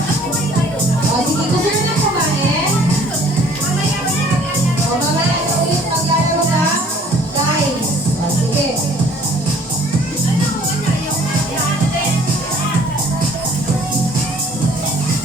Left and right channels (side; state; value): both; normal; correlation 0.55